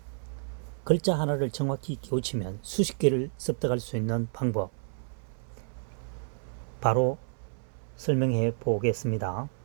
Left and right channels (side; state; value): left; silent; 58 dB below the other